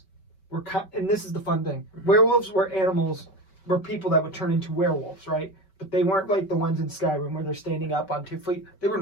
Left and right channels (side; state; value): right; late; 5.2 ms